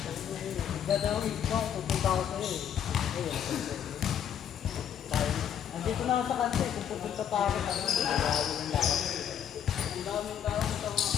Dadawang ikaw, pupunta ako sa'yo eh. Ayun. Andito na ako sa kanto eh, kung pupunta pa ako sa kanto. Ang daming tao sa mga,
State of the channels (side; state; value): right; quieter; 9.1 dB